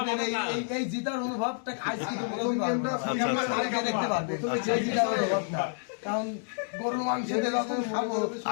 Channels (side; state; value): right; silent; digital silence